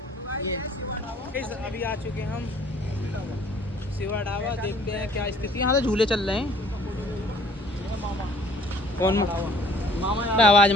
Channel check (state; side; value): normal; both; correlation 0.56